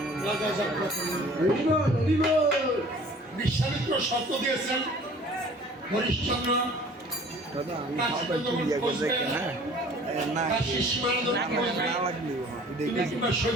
রাজা যাত্রা করলেন। বিশ্বামিত্র শর্ত দিয়েছেন হরিশ্চন্দ্র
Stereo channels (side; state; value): both; normal; correlation 0.49